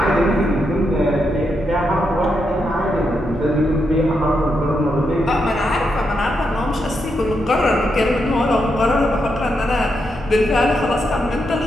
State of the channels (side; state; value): both; normal; correlation 0.83